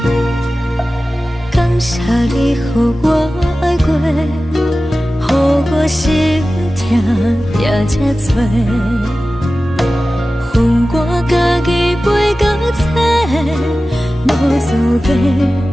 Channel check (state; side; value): normal; both; correlation 0.95